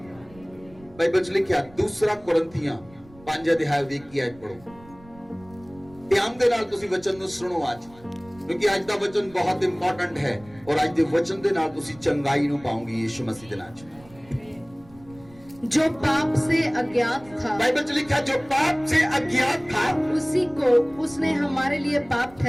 ਬਾਈਬਲ 'ਚ ਲਿਖਿਆ 2 ਕੁਰਿੰਥੀਆਂ 5 ਅਧਿਆਇ ਦੀ 21 ਆਇਤ ਪੜੋ। ਧਿਆਨ ਦੇ ਨਾਲ ਤੁਸੀਂ ਵਚਨ ਨੂੰ ਸੁਣੋ ਅੱਜ, ਕਿਉਂਕਿ ਅੱਜ ਦਾ ਵਚਨ ਬਹੁਤ ਇੰਪੋਰਟੈਂਟ ਹੈ, ਔਰ ਅੱਜ ਦੇ ਵਚਨ ਦੇ ਨਾਲ ਤੁਸੀਂ ਚੰਗਾਈ ਨੂੰ ਪਾਓਗੇ ਯੀਸ਼ੂ ਮਸੀਹ ਦੇ ਨਾਮ 'ਚ। जो पाप से अज्ञात था, बाइबल 'ਚ लिखा जो पाप से अज्ञात था, उसी को उसने हमारे लिए पाप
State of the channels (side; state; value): right; noise; rumble, 24 dB below the sound